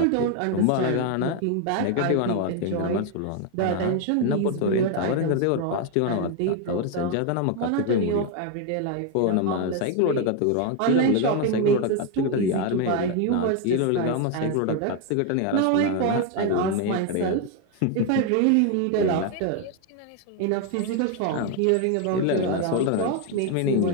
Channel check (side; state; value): both; different; correlation 0.01